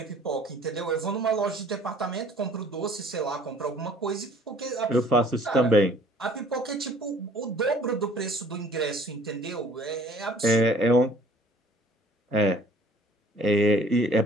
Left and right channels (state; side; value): normal; both; correlation 0.54